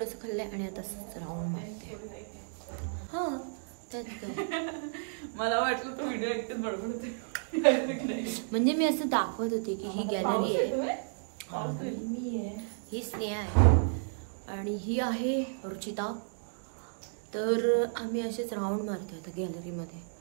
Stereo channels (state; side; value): silent; left; digital silence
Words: खाल्लं आहे आणि आता राऊंड मारते. हो त्यात काय मला वाटलं तो व्हिडिओ एकटेच बडबड होते. म्हणजे मी असं दाखवत होते की ही गॅलरी आहे, ही स्नेहा आहे आणि ही आहे रुचिता. तर आम्ही असेच राऊंड मारतोय आता गॅलरीमध्ये,